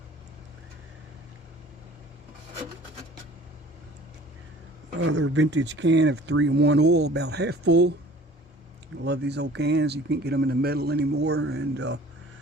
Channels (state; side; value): normal; both; correlation 0.48